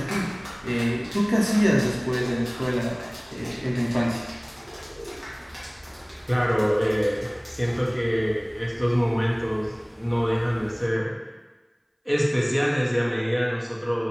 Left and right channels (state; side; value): identical; both; correlation 1.00